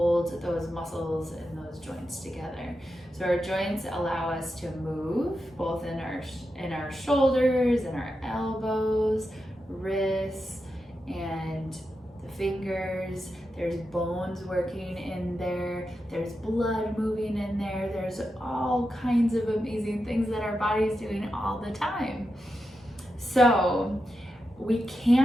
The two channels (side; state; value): both; normal; correlation 0.88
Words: those muscles and those joints together. So our joints allow us to move both in our shoulders and our elbows, wrists, and the fingers. There's bones working in there, there's blood moving in there, there's all kinds of amazing things that our body is doing all the time. So we